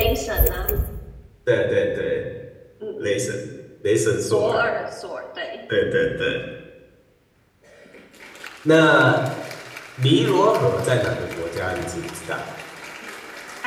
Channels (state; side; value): identical; both; correlation 1.00